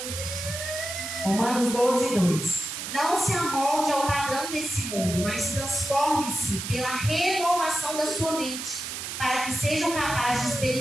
Romanos 12, 2. Não se amolde ao padrão desse mundo, mas transforme-se pela renovação da sua mente, para que sejam capazes de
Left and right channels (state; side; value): noise; right; hiss, 6 dB below the sound